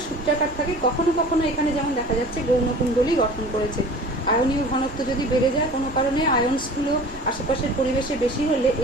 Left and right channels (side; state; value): both; normal; correlation 0.42